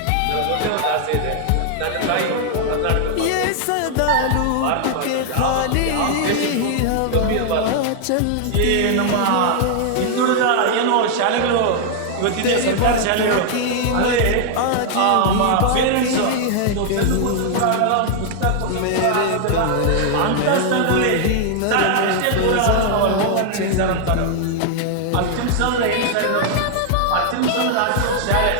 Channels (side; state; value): both; different; correlation 0.00